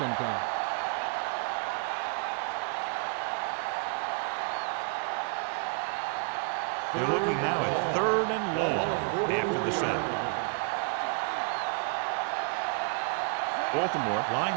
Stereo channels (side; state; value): left; quieter; 38.3 dB